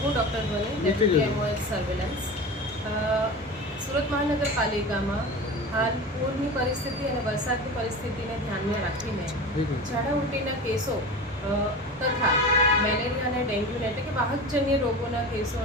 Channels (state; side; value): normal; both; correlation 0.30